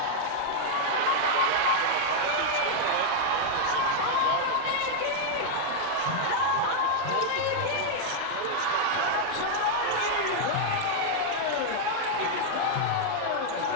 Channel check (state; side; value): different; both; correlation 0.00